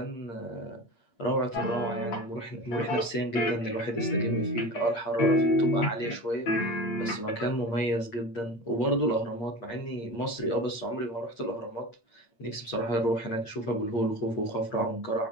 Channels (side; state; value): right; late; 8.6 ms